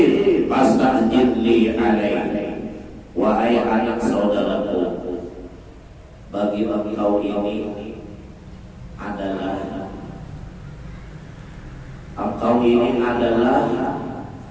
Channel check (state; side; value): identical; both; correlation 1.00